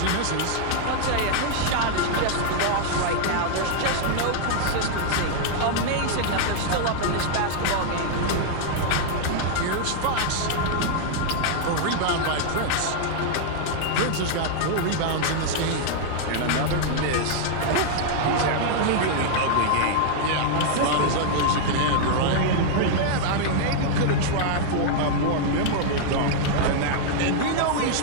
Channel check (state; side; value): different; both; correlation -0.01